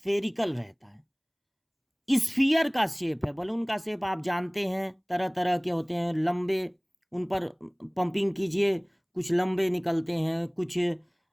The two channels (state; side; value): identical; both; correlation 1.00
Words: रहता है। स्फीयर का शेप है। बलून का शेप आप जानते हैं, तरह तरह के होते हैं। लंबे, उन पर पंपिंग कीजिए, कुछ लंबे निकलते हैं, कुछ